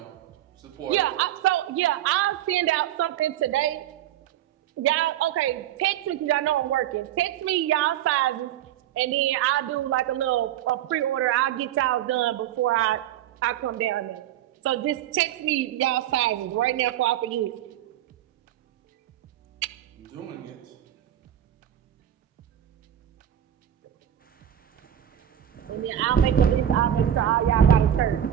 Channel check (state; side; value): quieter; left; 11.3 dB